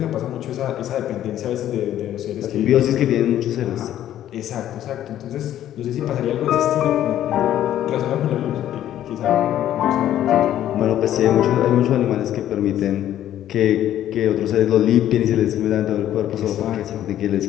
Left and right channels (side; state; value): right; quieter; 11.9 dB